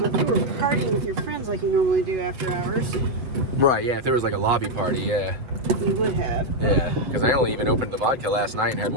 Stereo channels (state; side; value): late; left; 7.8 ms